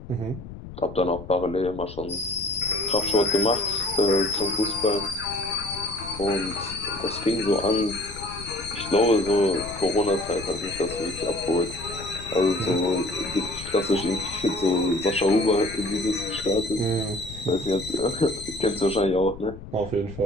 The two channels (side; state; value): left; noise; rumble, 13 dB below the sound